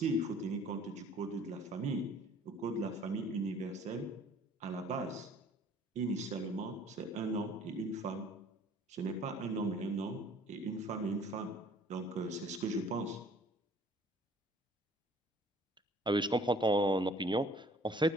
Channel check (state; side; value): normal; both; correlation 0.54